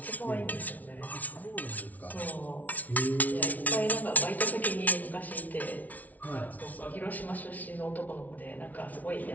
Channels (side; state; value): right; late; 0.074 ms